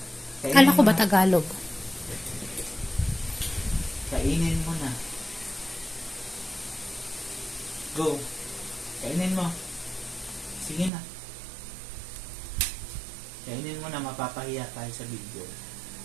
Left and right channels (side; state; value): left; drops out; at 10.9 s